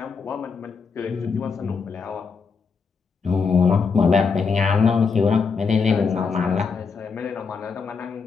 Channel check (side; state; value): right; quieter; 5.2 dB